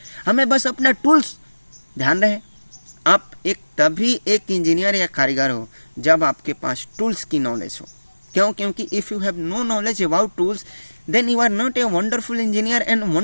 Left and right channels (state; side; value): inverted; both; correlation -1.00